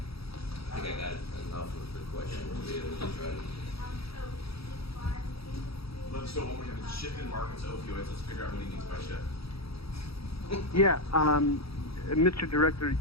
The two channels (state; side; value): late; right; 0.77 ms